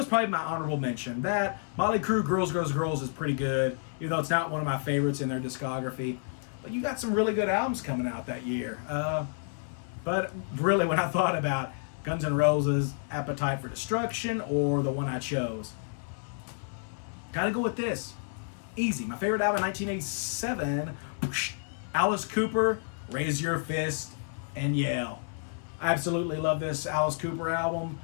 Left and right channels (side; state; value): right; silent; 56 dB below the other